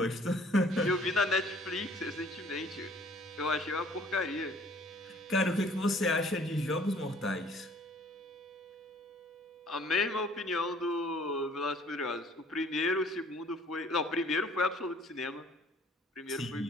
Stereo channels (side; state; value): both; normal; correlation 0.56